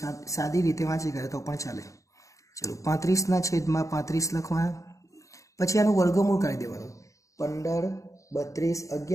સાદી રીતે વાંચી કરે તો પણ ચાલે. ચલો 35 ના છેદમાં 35 લખવા. પછી આનું વર્ગમૂળ કાઢી દેવાનું. 15 32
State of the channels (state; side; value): late; right; 0.15 ms